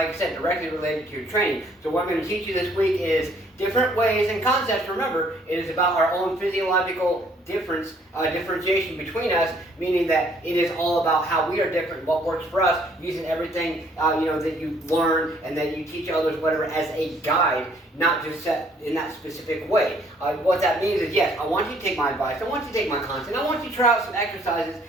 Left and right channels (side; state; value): both; normal; correlation 0.63